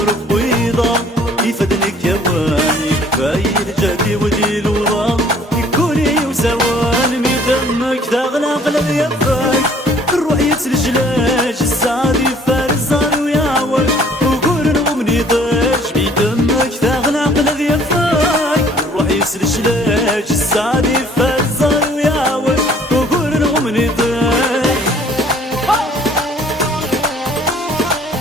بيضام يفدنك جواني كفاية الجدي وذي الوضام يكوني وزوان من دمك تغلى قلب يباك الروح يتلجلاج السعد يفار الزهر ويعوج وقول نغمني ضاج بدمك تغلى قلب يباك الروح يتلجلاج السعد يفار الزهر ويعوج وقول نغمني ضاج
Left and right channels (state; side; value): normal; both; correlation 0.56